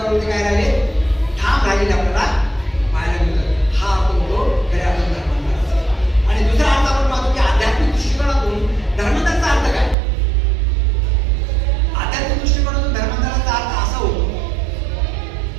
काय राहिले, ठाम राहिलेले आपल्याला पाहायला मिळतं. हा आपण तो खऱ्या अर्थाने धर्मांतराचा. आणि दुसरा अर्थ आपण पाहतो की आध्यात्मिक दृष्टिकोनातून धर्मांतराचा अर्थ काय. आध्यात्मिक दृष्टिकोनातून धर्मांतराचा अर्थ असा होतो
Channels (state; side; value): drops out; left; at 10.0 s